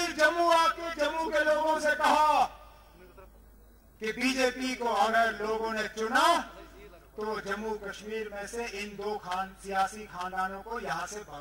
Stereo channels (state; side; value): identical; both; correlation 1.00